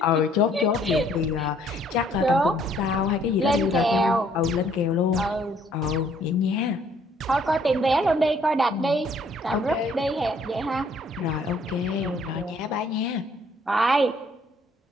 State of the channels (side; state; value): both; normal; correlation 0.62